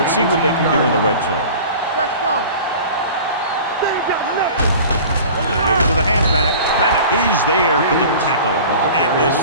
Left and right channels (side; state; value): both; inverted; correlation -0.40